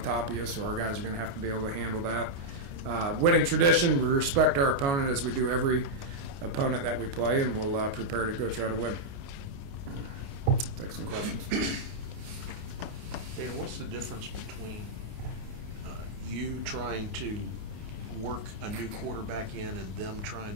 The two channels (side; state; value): left; late; 29 ms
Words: top of you, so our guys are going to have to be able to handle that. Winning tradition, we respect our opponent as we do every opponent that we play, and we'll prepare to go try to win. Take some questions. Dana, what's the difference between you trying to work a new quarterback in and them